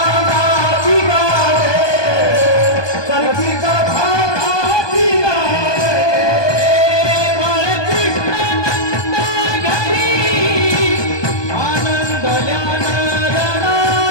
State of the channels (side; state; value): right; late; 1.2 ms